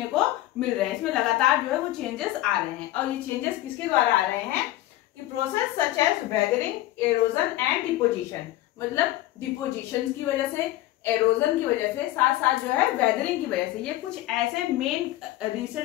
को मिल रहे हैं, इसमें लगातार जो है वो चेंजेस आ रहे हैं। और ये चेंजेस किसके द्वारा आ रहे हैं कि process such as weathering, erosion and deposition. मतलब डिपोजिशन की वजह से, एरोजन की वजह से, साथ साथ जो है वेदरिंग की वजह से, ये कुछ ऐसे मेन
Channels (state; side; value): quieter; right; 15.8 dB